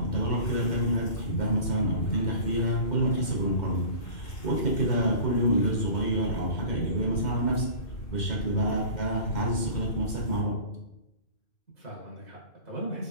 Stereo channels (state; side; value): late; right; 2.1 ms